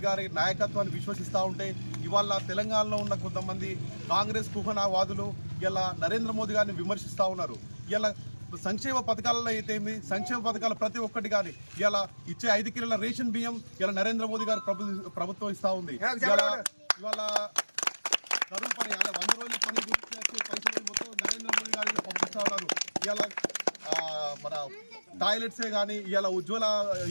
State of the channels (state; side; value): inverted; both; correlation -1.00